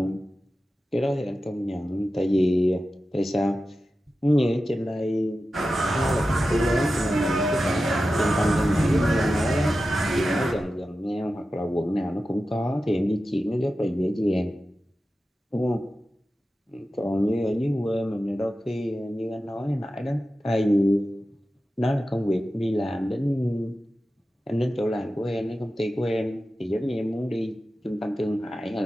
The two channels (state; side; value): normal; both; correlation 0.93